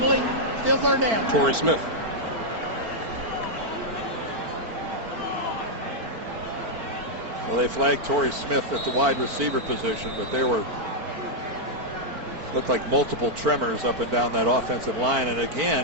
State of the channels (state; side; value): late; left; 4.5 ms